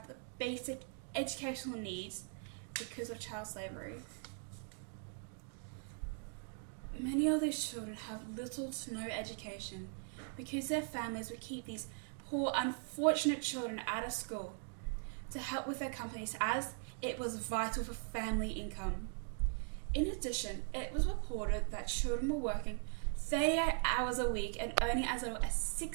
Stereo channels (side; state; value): left; silent; 51 dB below the other